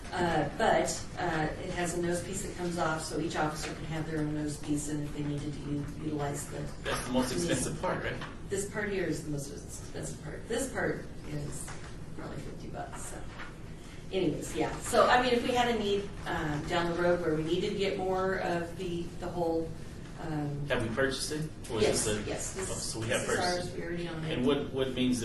But it has a nose piece that comes off, so each officer can have their own nose piece, and if they needed to utilize That's the most expensive part, right? this part here is the most expensive part. This part is probably $50. So, anyways, yeah. So, if we had a need down the road where we needed to get more of the whole. Have we purchased it? Or Yes, is this yes. This, so we have this is purchased ours. it. We already own it. And what means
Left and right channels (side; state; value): both; identical; correlation 1.00